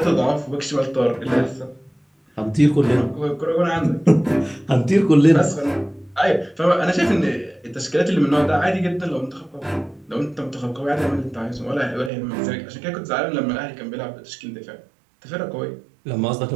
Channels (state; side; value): drops out; left; at 12.1 s